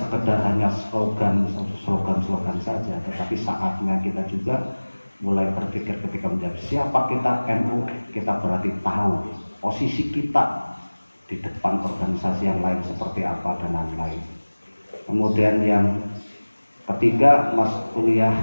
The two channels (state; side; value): inverted; both; correlation -1.00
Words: hanya slogan saja, tetapi saatnya kita juga mulai berpikir ketika menjawab siapa kita NU, kita berarti tahu posisi kita di depan organisasi yang lain seperti apa dan lain-lain. Kemudian yang ketiga, mas'uliyah